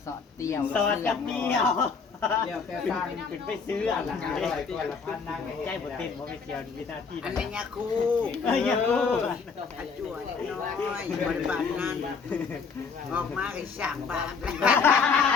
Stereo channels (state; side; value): quieter; right; 5.3 dB